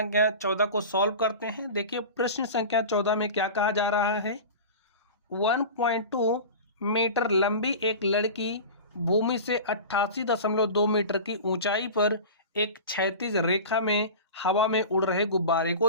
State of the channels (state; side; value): inverted; both; correlation -0.33